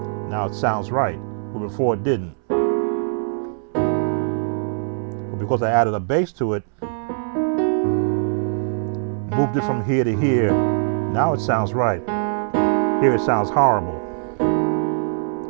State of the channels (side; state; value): left; silent; 64 dB below the other